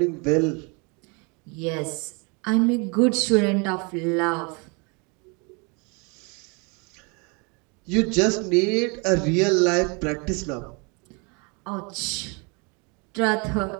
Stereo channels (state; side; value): quieter; left; 31.9 dB